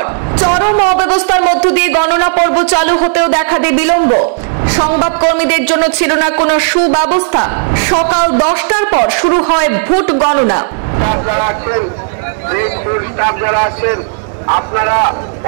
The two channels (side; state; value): left; silent; digital silence